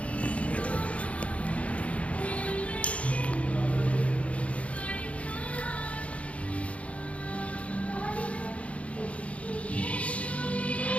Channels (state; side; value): late; right; 0.064 ms